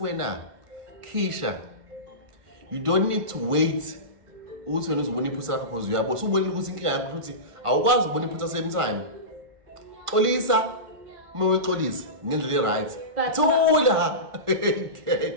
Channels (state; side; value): late; left; 1.4 ms